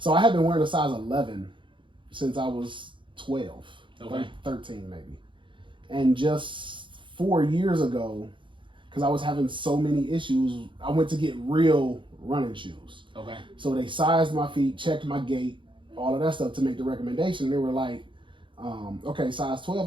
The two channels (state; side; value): late; left; 0.24 ms